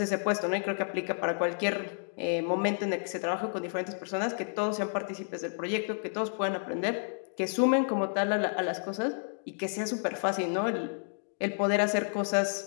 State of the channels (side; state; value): right; silent; digital silence